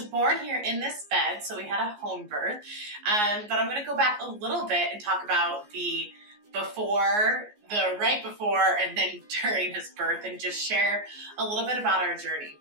born here in this bed, so we had a home birth. But I'm going to go back a little bit and talk about the before, the right before, and then during his birth, and just share a little bit about our journey.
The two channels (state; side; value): late; left; 14 ms